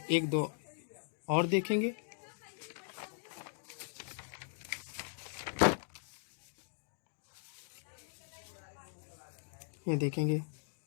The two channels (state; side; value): silent; right; digital silence